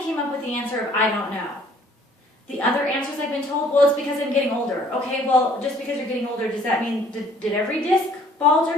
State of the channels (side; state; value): both; normal; correlation 0.58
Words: came up with the answer of, "I don't know." The other answers I've been told, "Well, it's because I'm getting older." Okay, well, just because you're getting older, does that mean, did every disc bulge